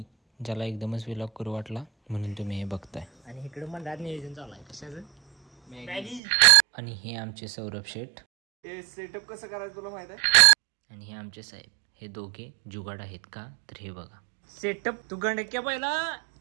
ज्याला एकदमच व्लॉग करू वाटला म्हणून तुम्ही हे बघताय. आणि इकडे मंडळात नियोजन चालू आहे कशाचं मॅगी. आणि हे आमचे सौरभ शेठ. हे सेटअप कसं करायचं तुला माहित आहे. आणि हे आमचे साहेब. हे दोघे जुगाड आहेत का तर हे बघा. सेटअप तू गंडक्या पहिला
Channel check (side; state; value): left; drops out; at 6.2 s